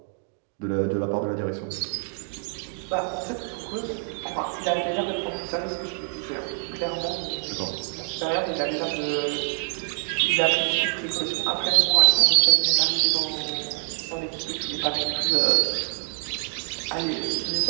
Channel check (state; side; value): silent; left; 57 dB below the other